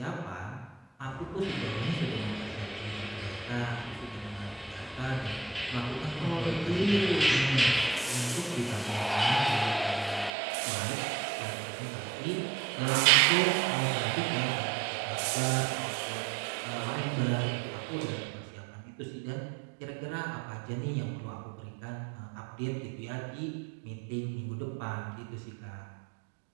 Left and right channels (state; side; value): drops out; left; at 10.3 s